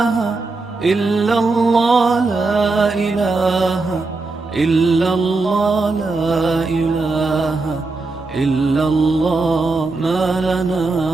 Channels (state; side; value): quieter; left; 3.6 dB